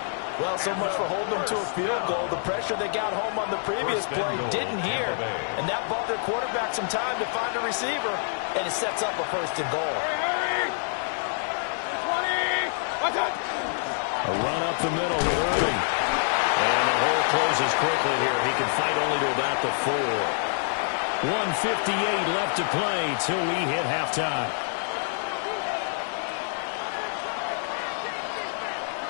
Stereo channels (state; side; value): silent; right; 60 dB below the other